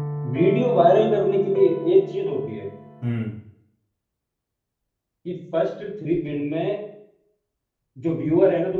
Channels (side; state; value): both; identical; correlation 1.00